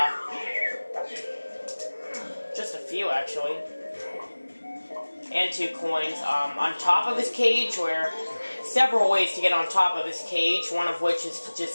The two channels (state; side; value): inverted; both; correlation -1.00